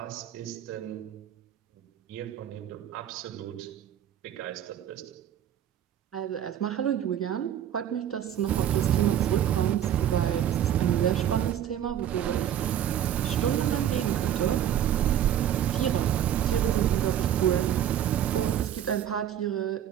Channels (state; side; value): quieter; left; 10.4 dB